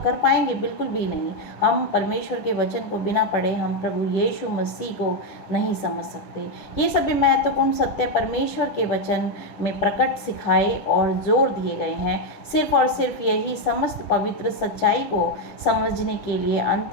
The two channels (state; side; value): late; right; 9.8 ms